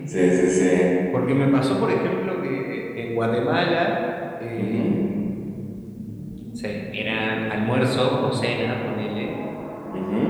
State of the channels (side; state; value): both; identical; correlation 1.00